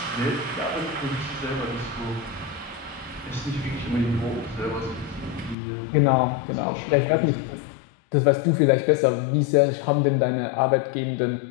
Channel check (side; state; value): right; drops out; at 5.6 s